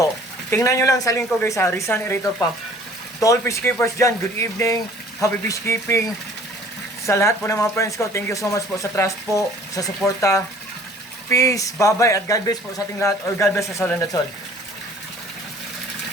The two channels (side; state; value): both; normal; correlation 0.52